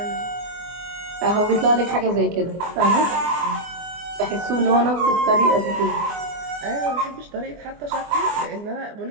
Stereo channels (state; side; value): late; left; 24 ms